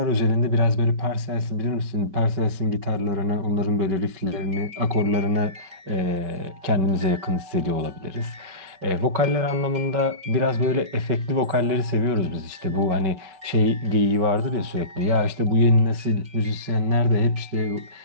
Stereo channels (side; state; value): left; late; 5.3 ms